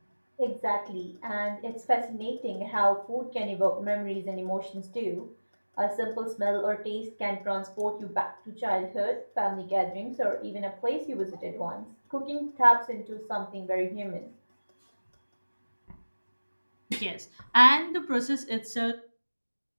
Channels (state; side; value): inverted; both; correlation -1.00